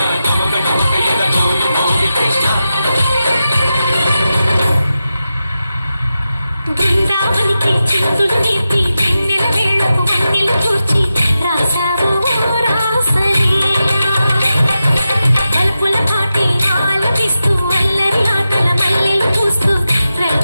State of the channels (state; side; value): inverted; both; correlation -0.91